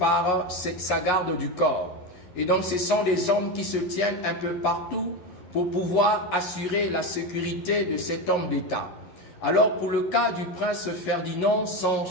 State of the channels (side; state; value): right; late; 11 ms